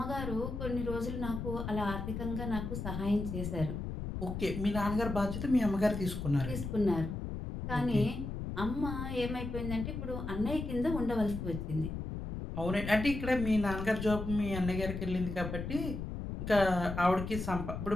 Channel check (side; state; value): left; noise; rumble, 5 dB below the sound